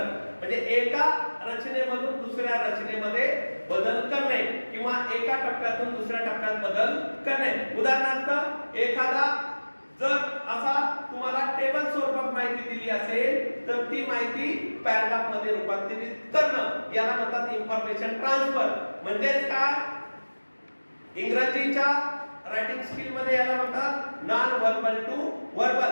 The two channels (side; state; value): both; inverted; correlation -1.00